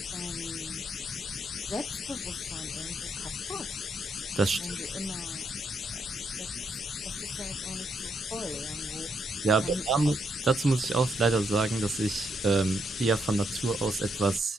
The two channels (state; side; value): normal; both; correlation 0.77